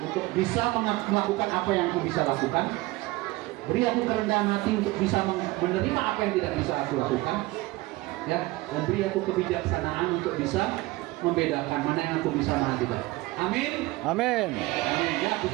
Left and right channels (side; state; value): left; quieter; 20.3 dB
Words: bisa melakukan apa yang aku bisa lakukan. Beri aku kerendahan hati untuk bisa menerima apa yang tidak bisa aku lakukan. Ya, dan beri aku kebijaksanaan untuk bisa membedakan mana yang aku bisa, mana tidak. Amin. Amin. Amin. Ya,